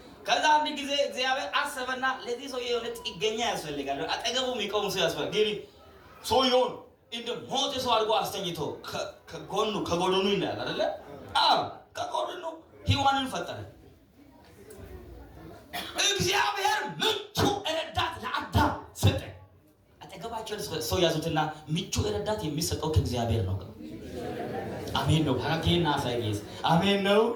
ከዛ አንድ ጊዜ እግዚአብሔር አሰበና ለዚህ ሰው የሆነ ጥገኛ ያስፈልጋል፣ አጠገቡ የሚቆም ሰው ያስፈልጋል። ግን ሰውየውን እንደ ሞተ ሰው አድርጎ አስተኝቶ ከጎኑ ይላል አይደለ? አዎ ከጎኑ ሔዋንን ፈጠረ። እግዚአብሔር ምቹ ረዳት ለአዳም ሰጠ። አጠገባቸው ሰው ያዙትና ምቹ ረዳት የሚሰጠው ከእግዚአብሔር ነው። አሜን ነው። ሀራጌና ሳይጌስ አሜን ነው።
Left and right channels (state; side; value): identical; both; correlation 1.00